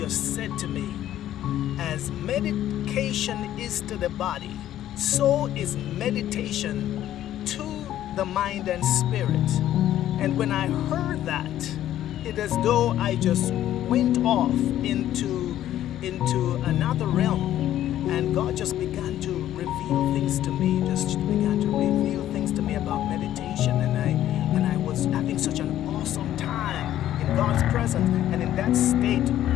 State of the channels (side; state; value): right; quieter; 12.4 dB